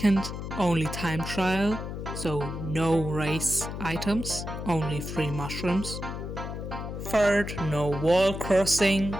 only time trial. So no race items, only free mushrooms. Third, no wall crossing.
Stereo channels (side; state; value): left; noise; hum, 7 dB below the sound